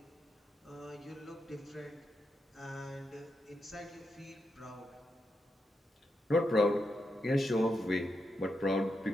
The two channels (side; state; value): both; normal; correlation 0.85